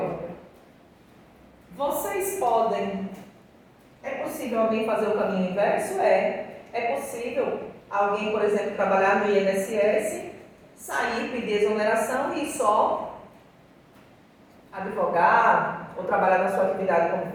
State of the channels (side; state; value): both; identical; correlation 1.00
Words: Vocês podem... É possível alguém fazer o caminho inverso? É possível alguém, por exemplo, trabalhar no INSS, sair, pedir exoneração e só advogar ou trabalhar na sua atividade como